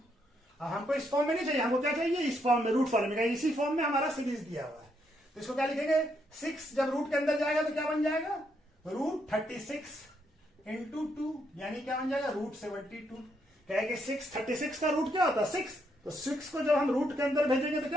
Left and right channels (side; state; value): both; normal; correlation 0.76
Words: अब हमको इस फॉर्म में नहीं चाहिए, हमको क्या चाहिए इस फॉर्म में, रूट फॉर्म में, इसी फॉर्म में हमारा सीरीज दिया हुआ है। तो इसको क्या लिखेंगे 6 जब रूट के अंदर जाएगा तो क्या बन जाएगा √36 × 2 यानी क्या बन जाएगा √72। क्या है कि 36 का रूट क्या होता है 6, तो 6 को जब हम रूट के अंदर भेजेंगे तो